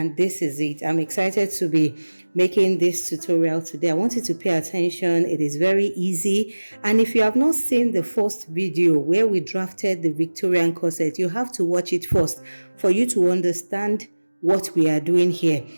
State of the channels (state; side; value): inverted; both; correlation -1.00